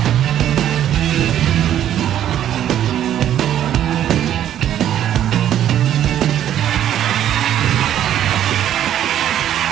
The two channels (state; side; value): quieter; left; 11.0 dB